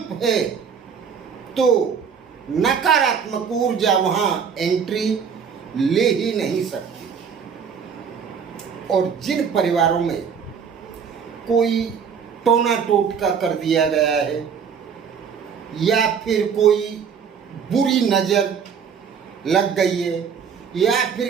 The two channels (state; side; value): quieter; left; 6.8 dB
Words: है तो नकारात्मक ऊर्जा वहाँ एंट्री ले ही नहीं सकती। और जिन परिवारों में कोई टोना टोटका कर दिया गया है या फिर कोई बुरी नज़र लग गई है या